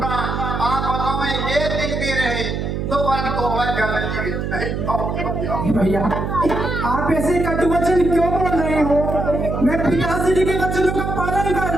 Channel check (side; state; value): right; noise; hum, 3 dB below the sound